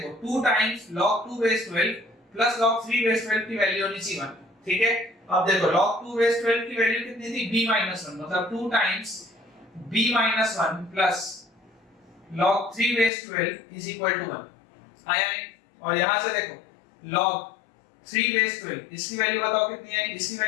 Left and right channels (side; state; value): right; drops out; at 13.1 s